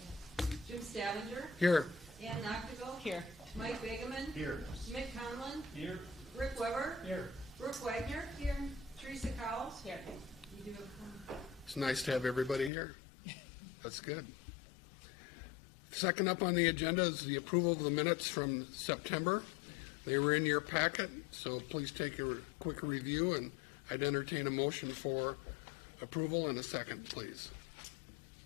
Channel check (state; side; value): drops out; right; at 12.7 s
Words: Jim Stavanger. Here. Ann Noctigal. Here. Mike Begeman. Here. Mick Conlon. Here. Rick Weber. Here. Brooke Wagner. Here. Teresa Cowles. Here. You do a It's nice to have everybody here. That's good. Second up on the agenda is the approval of the minutes from September. They were in your packet, so please take a quick review, and I'd entertain a motion for approval in a second, please.